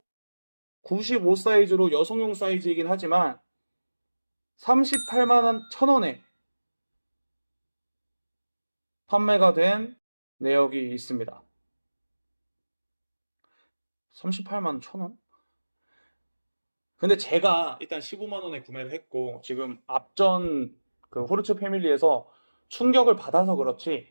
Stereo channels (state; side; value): inverted; both; correlation -1.00